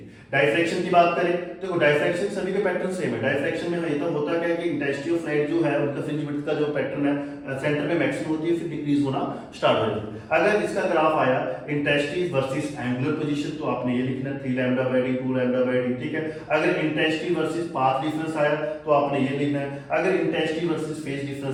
डायफ्रैक्शन की बात करें तो देखो डायफ्रैक्शन सभी के पैटर्न सेम है। डायफ्रैक्शन में ये तो होता क्या है कि इंटेंसिटी ऑफ लाइट जो है उनका फ्रिंज विड्थ का जो पैटर्न है सेंटर में मैक्सिमम होती है, फिर डिक्रीज होना स्टार्ट हो जाती है। अगर इसका ग्राफ आया इंटेंसिटी वर्सेस एंगुलर पोजीशन, तो आपने ये लिखना 3 λ/d 2 λ/d, ठीक है। अगर इंटेंसिटी वर्सेस पाथ डिफरेंस आया तो आपने ये लिखना है। अगर इंटेंसिटी वर्सेस फेज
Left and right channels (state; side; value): identical; both; correlation 1.00